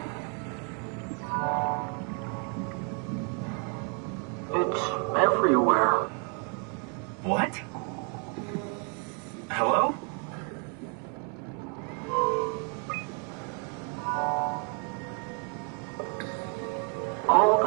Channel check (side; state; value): left; quieter; 38.6 dB